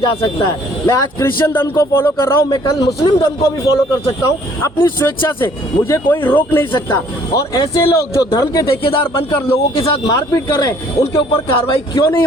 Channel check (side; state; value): both; normal; correlation 0.59